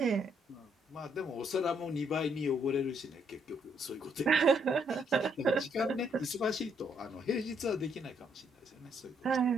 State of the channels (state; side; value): normal; both; correlation 0.71